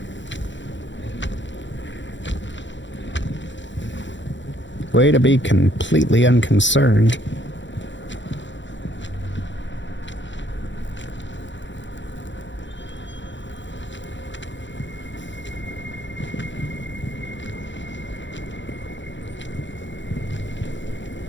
Way to be completely unconcerned.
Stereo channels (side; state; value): right; late; 0.54 ms